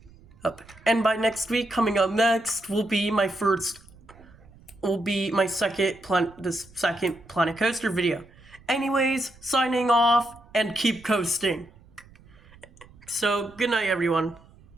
And by next week, coming up next will be my second Planet Coaster video. Anyways, signing off and keep coasting. So, good night everyone.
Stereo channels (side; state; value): right; noise; rumble, 25 dB below the sound